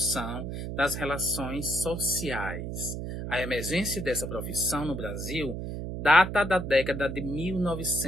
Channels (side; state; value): right; noise; hum, 5 dB below the sound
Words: das relações sociais. A emergência dessa profissão no Brasil data da década de